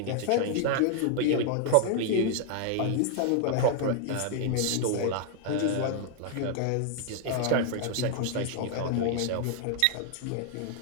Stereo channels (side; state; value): both; different; correlation 0.00